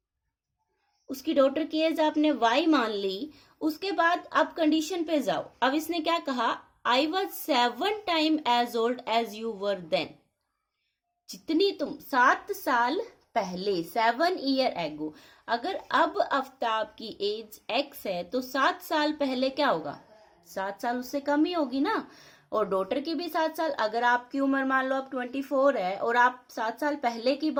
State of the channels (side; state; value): both; identical; correlation 1.00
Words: उसकी डॉटर की एज आपने वाई मान ली। उसके बाद अब कंडीशन पे जाओ। अब इसने क्या कहा, I was 7 times as old as you were then। जितनी तुम 7 साल पहले, 7 years ago। अगर अब आफ्ताब की एज एक्स है तो 7 साल पहले क्या होगा, 7 साल उससे कम ही होगी ना। और डॉटर की भी 7 साल, अगर आपकी उम्र मान लो अब 24 है और आप 7 साल पहले की